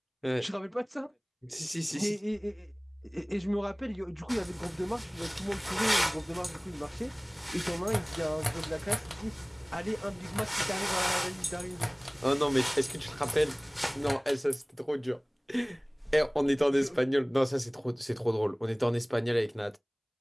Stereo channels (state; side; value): identical; both; correlation 1.00